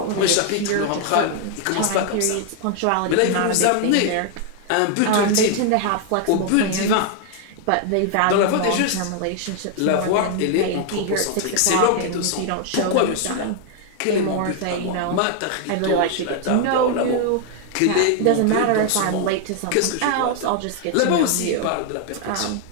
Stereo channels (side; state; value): both; different; correlation 0.00